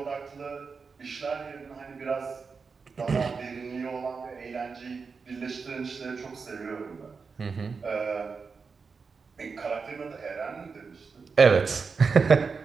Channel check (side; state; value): left; quieter; 5.1 dB